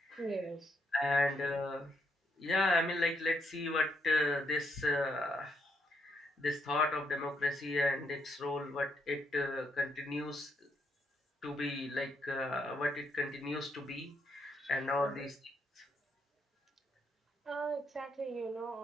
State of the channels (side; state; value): both; normal; correlation 0.76